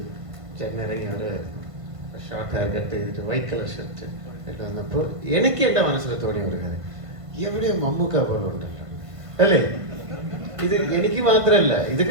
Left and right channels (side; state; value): left; late; 1.5 ms